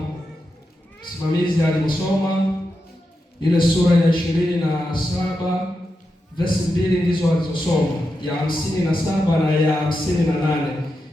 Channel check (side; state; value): both; normal; correlation 0.88